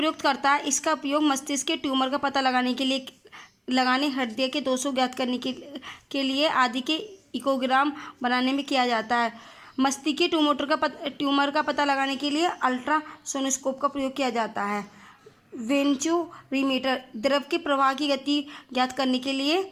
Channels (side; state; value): both; identical; correlation 1.00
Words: करता है। इसका उपयोग मस्तिष्क के ट्यूमर का पता लगाने के लिए हृदय के दोषों ज्ञात करने के लिए आदि के इकोग्राम बनाने में किया जाता है। मस्तिष्क के ट्यूमर का पता लगाने के लिए अल्ट्रासोनोस्कोप का प्रयोग किया जाता है। वेंचुरीमीटर द्रव के प्रवाह की गति ज्ञात करने के लिए